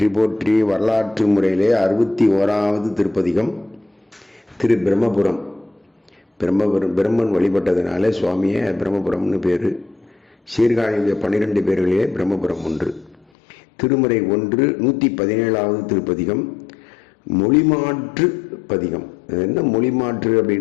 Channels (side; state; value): right; drops out; at 13.2 s